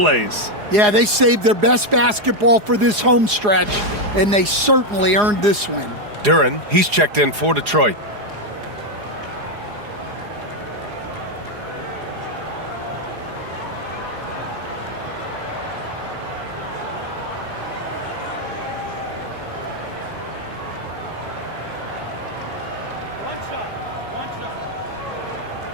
Yeah, they saved their best basketball for this home stretch, and they certainly earned this win. Duren, he's checked in for Detroit.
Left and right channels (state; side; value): late; left; 4.8 ms